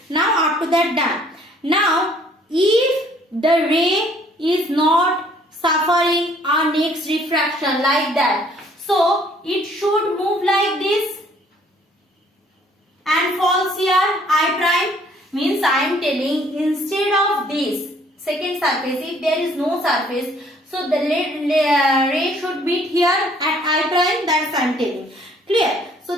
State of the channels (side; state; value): both; normal; correlation 0.60